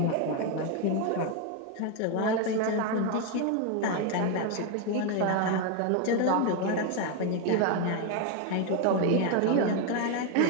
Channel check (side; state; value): both; different; correlation 0.02